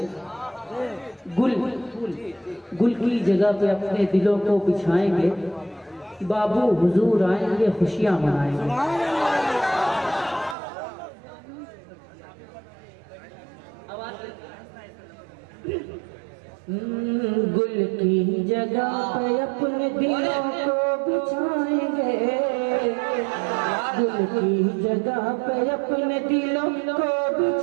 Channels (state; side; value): drops out; left; at 10.6 s